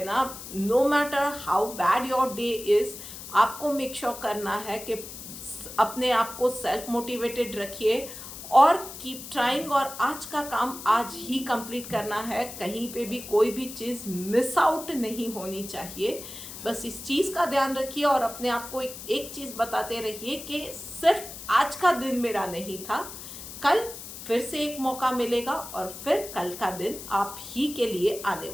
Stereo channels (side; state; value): left; noise; hiss, 12 dB below the sound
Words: ना, no matter how bad your day is, आपको मेक श्योर करना है कि अपने आप को सेल्फ मोटिवेटेड रखिए और कीप ट्राइंग, और आज का काम आज ही कंप्लीट करना है। कहीं पे भी कोई भी चीज़ मिस आउट नहीं होनी चाहिए। बस इस चीज़ का ध्यान रखिए, और अपने आप को एक चीज़ बताते रहिए कि सिर्फ आज का दिन मेरा नहीं था, कल फिर से एक मौका मिलेगा, और फिर कल का दिन आप ही के लिए आने